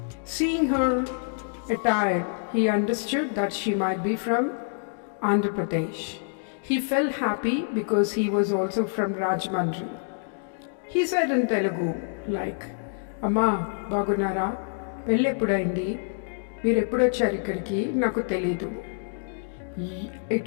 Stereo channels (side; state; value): right; silent; digital silence